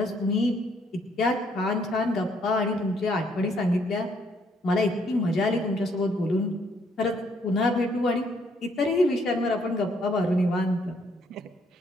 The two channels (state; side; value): normal; both; correlation 0.68